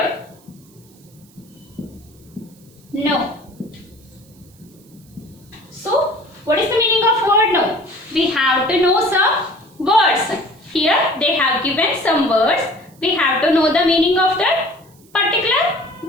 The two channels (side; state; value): right; noise; hiss, 29 dB below the sound